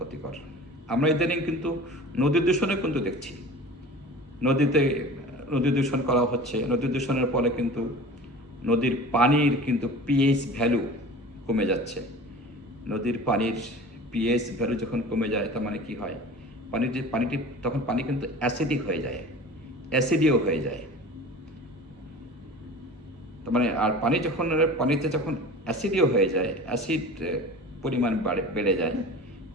আমরা ইদানিং কিন্তু নদী দূষণে কিন্তু দেখছি, নদী দূষণ করা হচ্ছে। নদী দূষণের ফলে কিন্তু নদীর পানির কিন্তু পিএইচ ভ্যালু কমে যাচ্ছে। নদীর পানির পিএইচ ভ্যালু যখন কমে যায়, তার মানে কি হয়, পানিটি তখন পানি কিন্তু অ্যাসিডিক হয়ে যায়, অ্যাসিডিও হয়ে যায়। তার মানে আর পানিতে যখন অ্যাসিডিও হয়ে যায়, অ্যাসিড পরিমাণ বেড়ে যায়,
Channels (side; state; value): both; normal; correlation 0.38